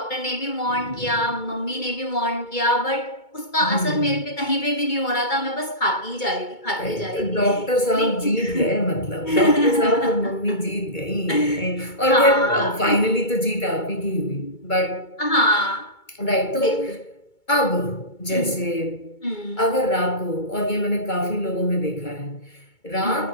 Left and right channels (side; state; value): right; late; 2.2 ms